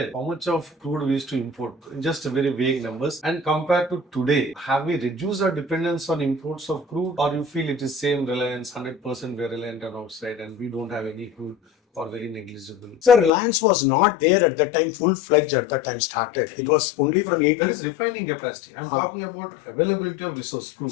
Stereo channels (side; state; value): right; drops out; at 13.3 s